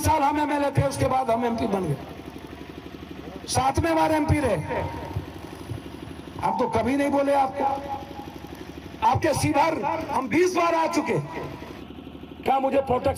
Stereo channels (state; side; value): identical; both; correlation 1.00